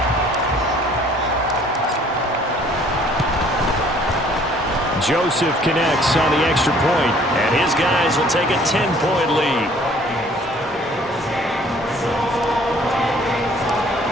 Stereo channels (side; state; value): both; normal; correlation 0.57